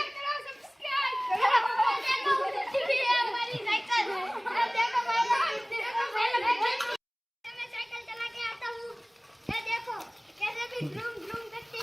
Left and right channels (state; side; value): identical; both; correlation 1.00